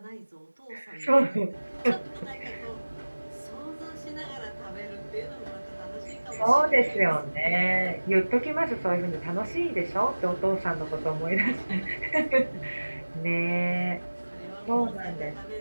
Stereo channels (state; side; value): inverted; both; correlation -1.00